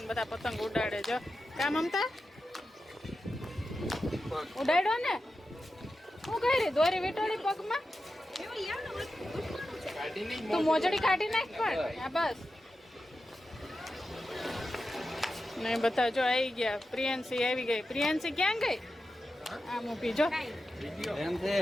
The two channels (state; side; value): normal; both; correlation 0.91